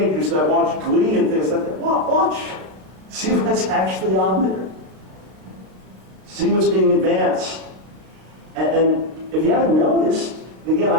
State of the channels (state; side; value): late; left; 33 ms